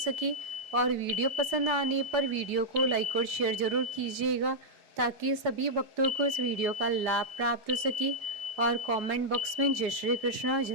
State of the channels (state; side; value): late; left; 4.7 ms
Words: और वीडियो पसंद आने पर वीडियो को लाइक और शेयर जरूर कीजिएगा, ताकि सभी भक्तों को इस वीडियो का लाभ प्राप्त हो सके। और कमेंट बॉक्स में जय श्री कृष्णा